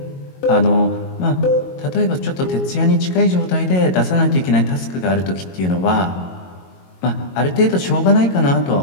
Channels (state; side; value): late; right; 22 ms